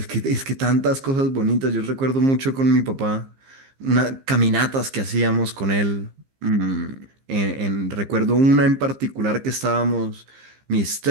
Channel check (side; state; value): left; late; 15 ms